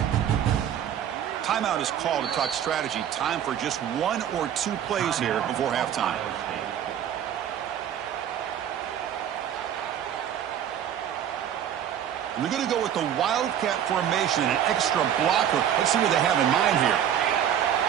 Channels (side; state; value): left; quieter; 9.8 dB